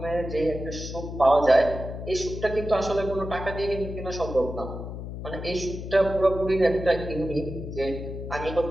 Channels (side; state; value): left; noise; hum, 8 dB below the sound